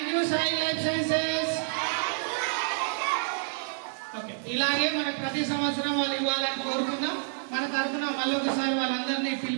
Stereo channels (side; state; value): left; silent; 59 dB below the other